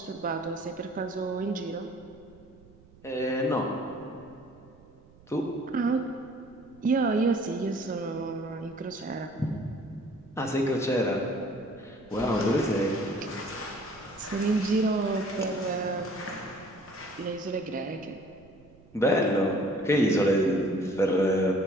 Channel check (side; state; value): right; noise; rumble, 25 dB below the sound